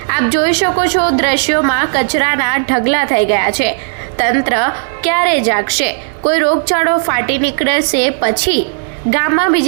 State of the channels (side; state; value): left; silent; digital silence